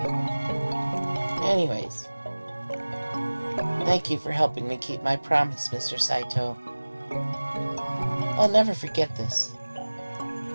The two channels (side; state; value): both; inverted; correlation -1.00